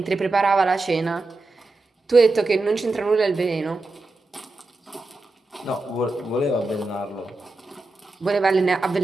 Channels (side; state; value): left; quieter; 3.2 dB